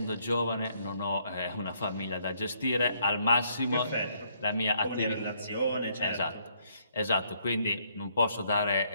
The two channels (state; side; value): inverted; both; correlation -0.70